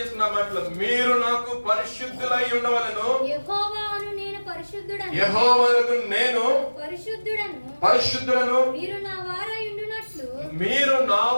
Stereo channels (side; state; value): both; inverted; correlation -1.00